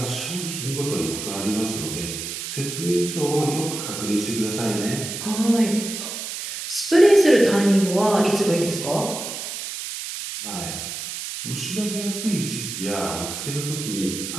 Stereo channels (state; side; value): noise; right; hiss, 6 dB below the sound